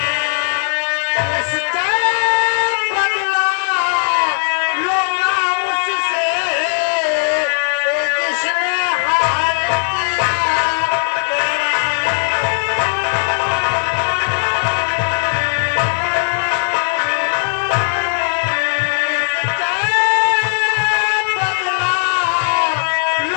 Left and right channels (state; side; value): silent; right; 68 dB below the other